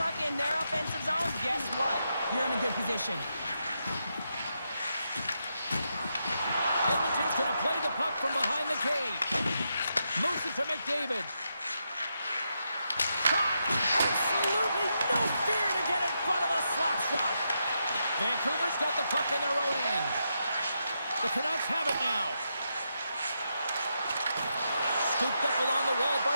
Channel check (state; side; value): inverted; both; correlation -0.83